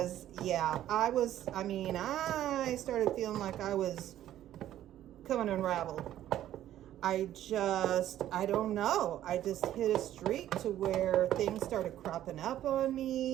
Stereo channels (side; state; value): left; quieter; 12.4 dB